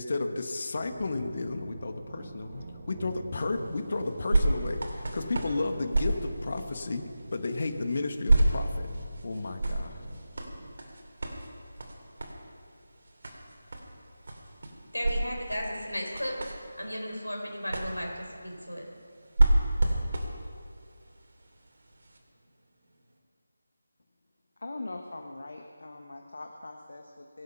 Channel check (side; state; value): both; inverted; correlation -0.93